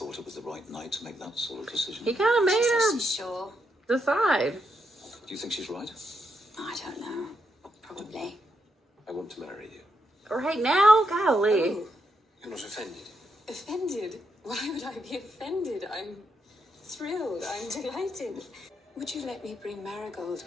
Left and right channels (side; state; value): both; normal; correlation 0.81